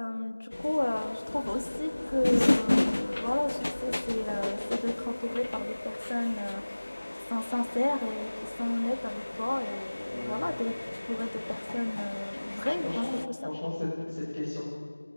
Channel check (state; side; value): inverted; both; correlation -1.00